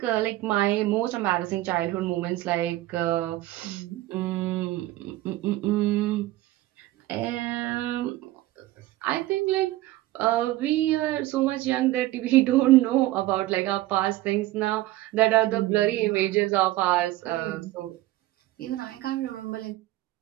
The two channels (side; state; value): left; quieter; 16.5 dB